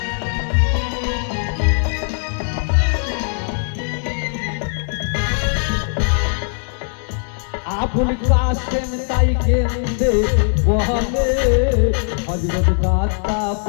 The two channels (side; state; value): right; silent; 60 dB below the other